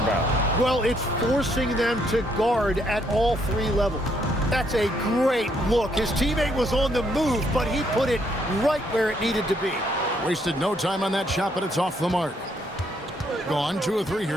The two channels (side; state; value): both; normal; correlation 0.71